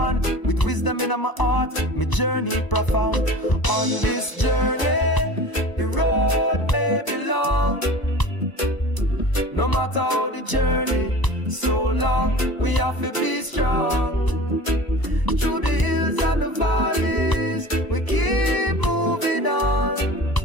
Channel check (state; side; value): late; right; 1.0 ms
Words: with wisdom in my heart, my journey profound. On this journey, the road may be long. No matter how the journey, so long, we have to be strong. Through the hills and the valleys, we keep moving on.